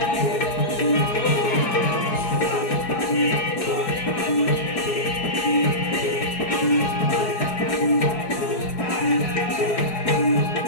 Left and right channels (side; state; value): right; late; 4.7 ms